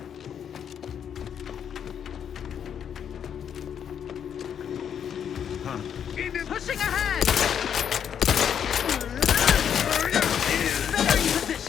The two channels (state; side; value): quieter; right; 8.4 dB